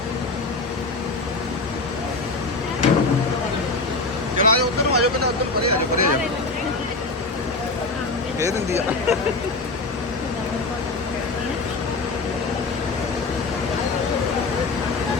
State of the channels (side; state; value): right; quieter; 3.5 dB